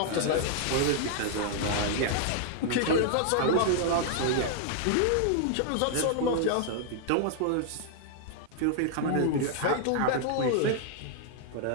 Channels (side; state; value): both; different; correlation -0.01